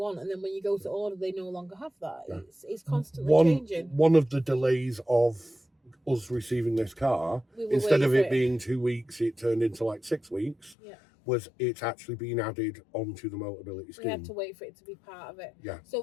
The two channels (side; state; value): right; drops out; at 10.8 s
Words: and then when you go to order, they no longer have that. It's constantly changing. One of the delays of us receiving this car, instead of it being 2 weeks, it turned into like 6 weeks. Was it's actually been added onto the Motability Scheme. We had to wait for it to be part of it.